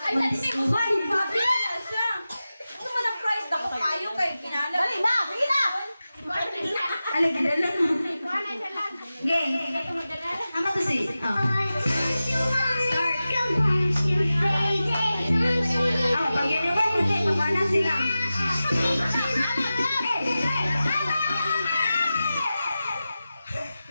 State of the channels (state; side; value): inverted; both; correlation -0.94